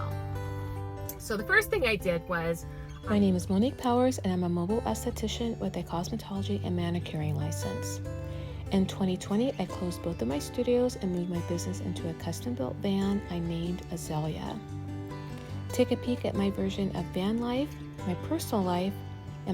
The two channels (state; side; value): identical; both; correlation 1.00